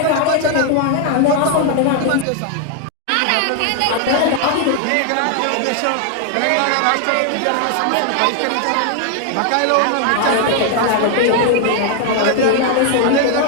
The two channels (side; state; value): both; different; correlation 0.00